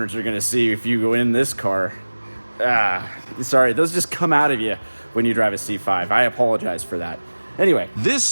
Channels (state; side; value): inverted; both; correlation -1.00